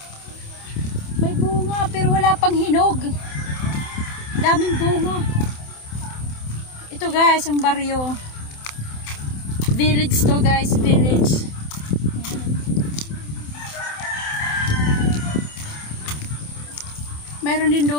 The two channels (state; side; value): late; right; 27 ms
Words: May bunga pero wala pang hinog. Daming bunga. Ito guys, ang baryo. Village to guys, village. Mayroon din